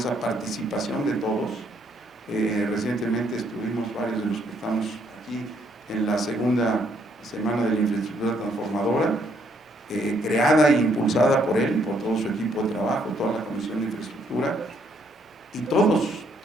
participación de todos. Recientemente estuvimos varios de los que estamos aquí en la segunda semana de la infraestructura transformadora, creada e impulsada por él y por todo su equipo de trabajo, toda la Comisión de Infraestructura, y todos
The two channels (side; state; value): both; normal; correlation 0.70